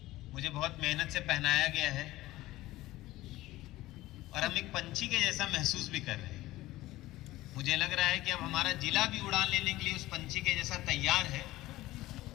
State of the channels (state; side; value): quieter; right; 17.2 dB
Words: मुझे बहुत मेहनत से पहनाया गया है और हम एक पंछी के जैसा महसूस भी कर रहे हैं। मुझे लग रहा है कि अब हमारा जिला भी उड़ान लेने के लिए उस पंछी के जैसा तैयार है।